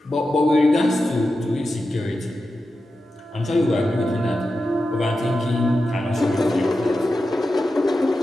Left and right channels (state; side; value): normal; both; correlation 0.91